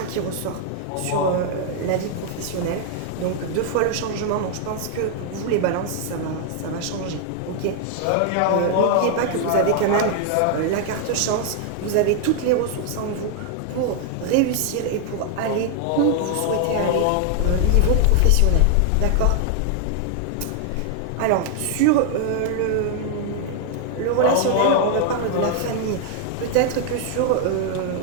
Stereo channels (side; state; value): both; different; correlation 0.00